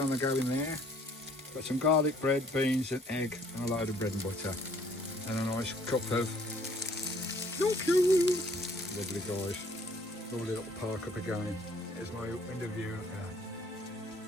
the go in there. Got some garlic bread, beans and egg and a load of bread and butter. And a nice cup of lovely guys. Lovely little park up again. Here's my window view.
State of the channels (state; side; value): normal; both; correlation 0.59